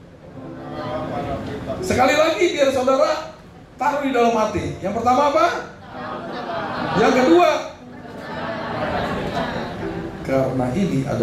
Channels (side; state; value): both; identical; correlation 1.00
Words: sekali lagi biar saudara taruh di dalam hati. Yang pertama apa? Yang kedua, karena ini